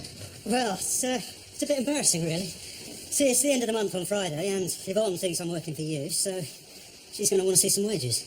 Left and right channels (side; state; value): both; identical; correlation 1.00